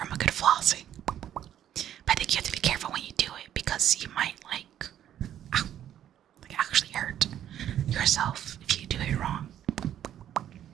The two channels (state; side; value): quieter; left; 10.8 dB